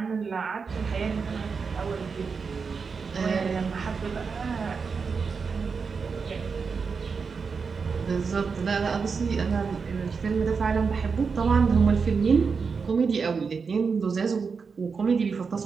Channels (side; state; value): left; quieter; 5.3 dB